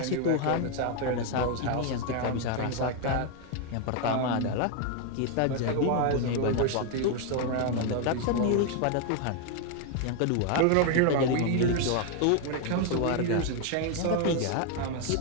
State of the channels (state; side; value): different; both; correlation 0.01